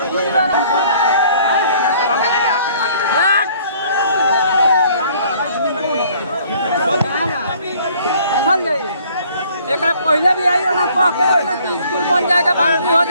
एक पहले भी आई ना कि स्कूल बन जाएगा, बाउंड्री हो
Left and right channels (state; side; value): inverted; both; correlation -0.58